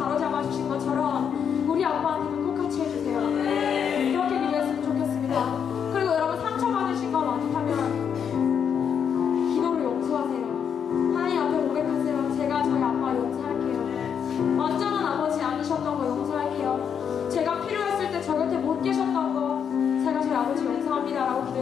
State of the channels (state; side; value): quieter; right; 7.6 dB